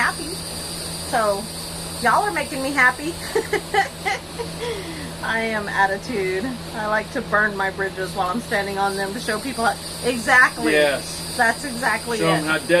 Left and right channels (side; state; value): both; identical; correlation 1.00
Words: So y'all are making me happy. I am attitude. I like to burn my bridges while I'm standing on them to show people exactly. Yes. That's exactly Show it. them how